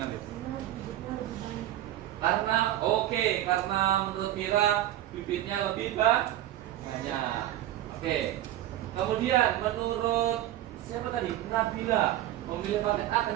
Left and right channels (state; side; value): quieter; left; 13.5 dB